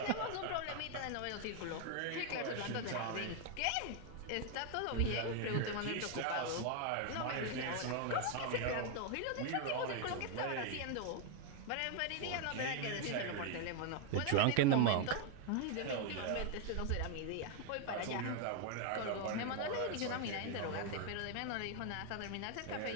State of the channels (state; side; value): different; both; correlation 0.01